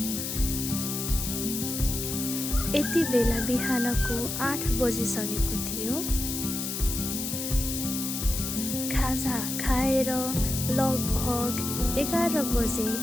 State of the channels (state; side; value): noise; left; hiss, 4 dB below the sound